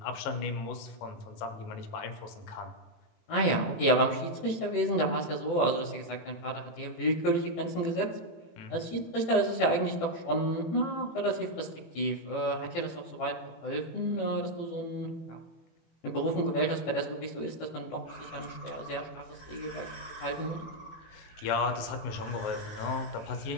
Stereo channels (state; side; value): late; right; 18 ms